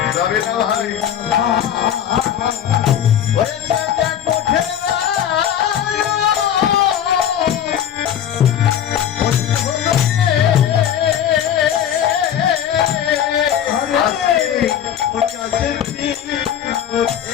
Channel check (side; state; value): right; quieter; 9.8 dB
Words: যাবে না ভাই